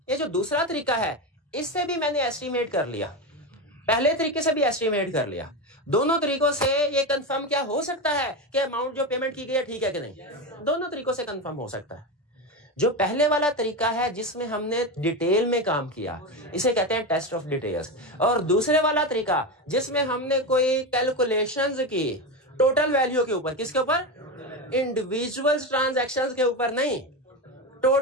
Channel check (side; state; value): both; normal; correlation 0.17